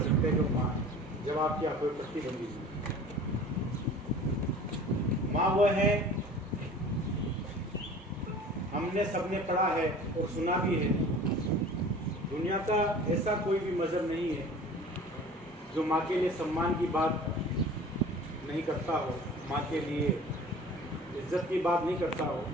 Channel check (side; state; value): both; normal; correlation 0.43